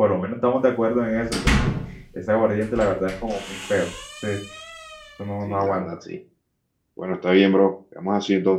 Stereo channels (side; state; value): both; identical; correlation 1.00